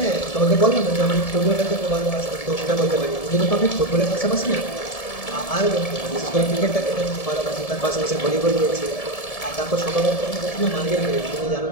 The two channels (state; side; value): late; right; 1.7 ms